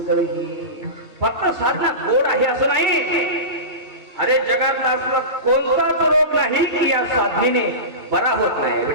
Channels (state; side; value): late; left; 2.3 ms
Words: ही. फक्त साधना गोड आहे असं नाही. अरे जगातला असला कोणताच रोग नाही की या साधनेने बरा होत नाही.